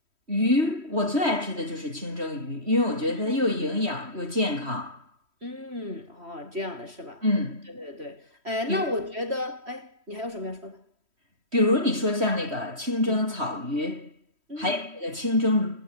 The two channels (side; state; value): left; late; 3.1 ms